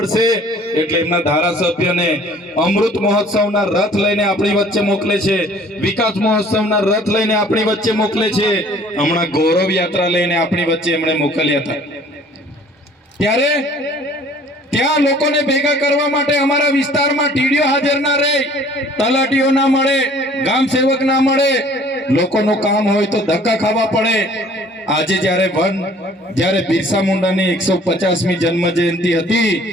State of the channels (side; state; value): both; normal; correlation 0.54